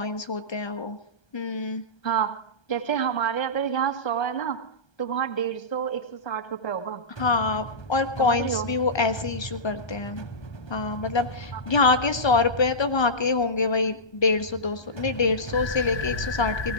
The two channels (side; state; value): right; late; 1.3 ms